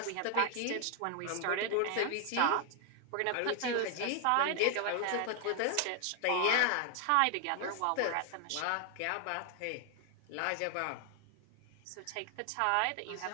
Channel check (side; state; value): both; different; correlation 0.00